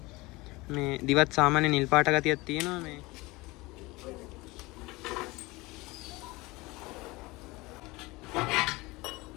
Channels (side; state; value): right; quieter; 22.4 dB